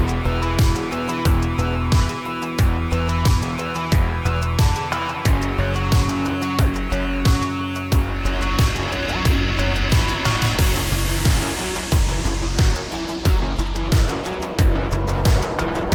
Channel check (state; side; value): identical; both; correlation 1.00